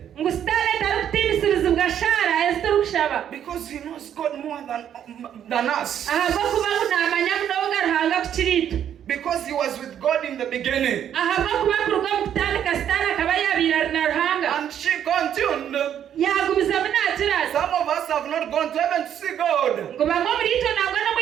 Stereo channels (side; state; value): left; quieter; 9.7 dB